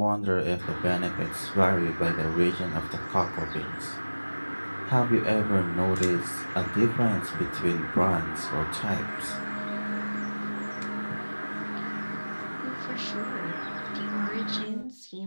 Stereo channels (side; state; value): both; inverted; correlation -1.00